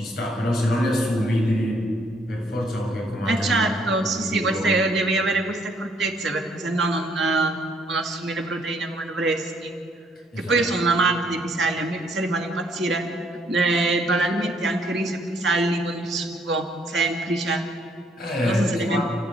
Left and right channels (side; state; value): both; normal; correlation 0.67